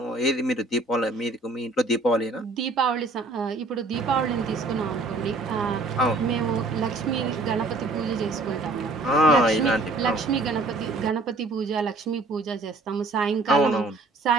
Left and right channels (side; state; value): left; quieter; 3.1 dB